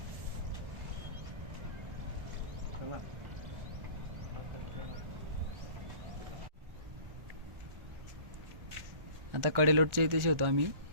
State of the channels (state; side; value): late; left; 1.4 ms